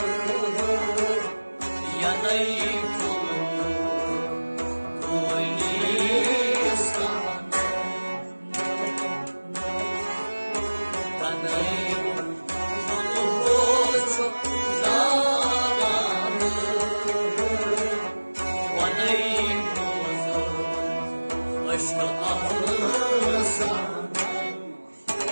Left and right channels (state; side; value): inverted; both; correlation -1.00